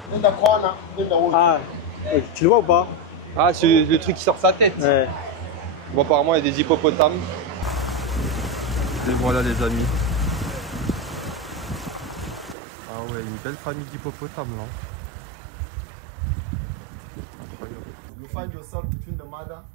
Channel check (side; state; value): left; drops out; at 12.6 s